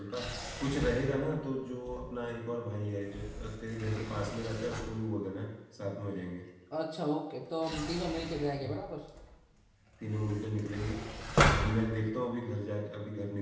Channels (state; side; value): identical; both; correlation 1.00